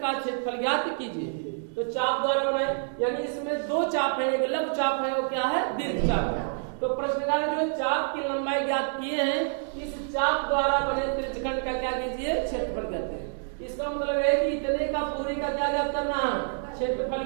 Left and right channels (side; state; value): left; silent; digital silence